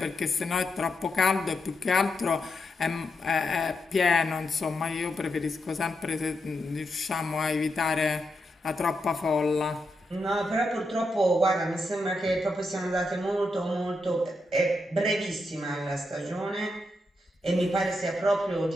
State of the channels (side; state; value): both; normal; correlation 0.84